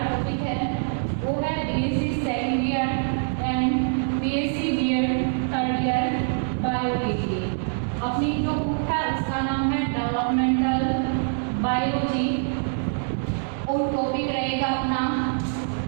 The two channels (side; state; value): left; silent; digital silence